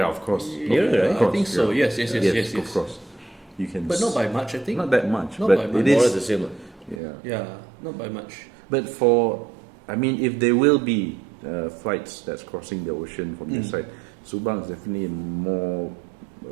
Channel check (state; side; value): drops out; left; at 7.0 s